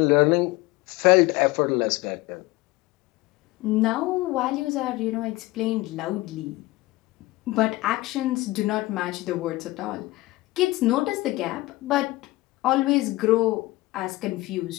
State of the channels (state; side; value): quieter; right; 19.9 dB